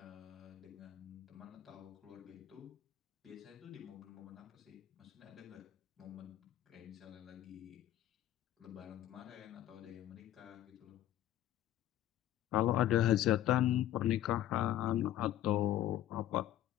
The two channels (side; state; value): right; quieter; 12.9 dB